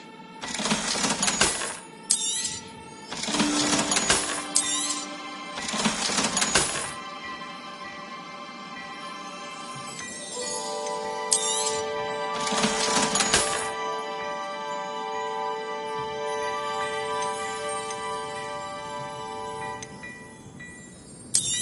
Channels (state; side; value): identical; both; correlation 1.00